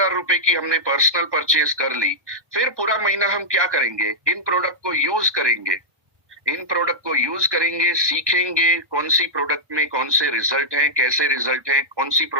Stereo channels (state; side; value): late; left; 1.2 ms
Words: रुपए की हमने पर्सनल परचेज कर ली। फिर पूरा महीना हम क्या करेंगे? इन प्रोडक्ट को यूज करेंगे, इन प्रोडक्ट को यूज करेंगे, सीखेंगे कौन सी प्रोडक्ट में कौन से रिजल्ट हैं, कैसे रिजल्ट हैं, कौन सी